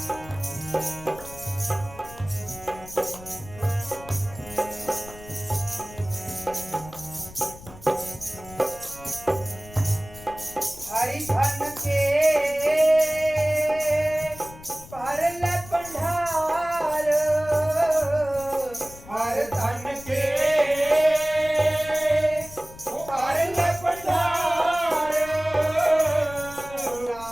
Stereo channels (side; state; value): left; noise; rumble, 18 dB below the sound